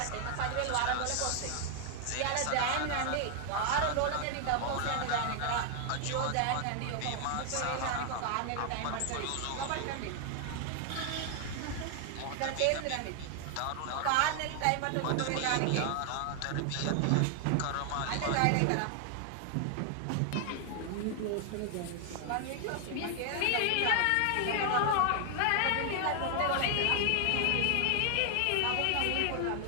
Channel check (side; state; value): both; different; correlation 0.00